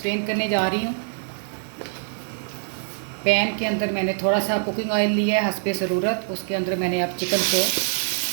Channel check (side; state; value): left; silent; digital silence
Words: करने जा रही हूँ। पैन के अंदर मैंने थोड़ा सा कुकिंग ऑयल लिया है हस्बे ज़रूरत। उसके अंदर मैंने अब चिकन को